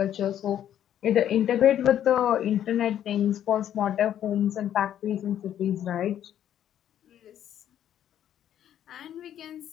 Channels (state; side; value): quieter; right; 10.6 dB